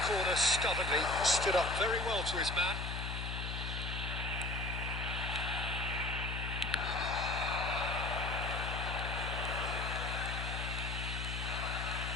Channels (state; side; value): noise; left; hum, 3 dB below the sound